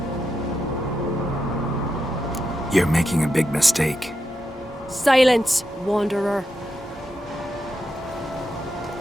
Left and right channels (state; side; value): normal; both; correlation 0.86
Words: You're making a big mistake. Silence, wanderer.